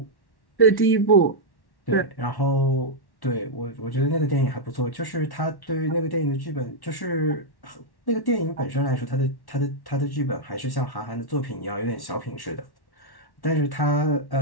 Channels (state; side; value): late; right; 1.1 ms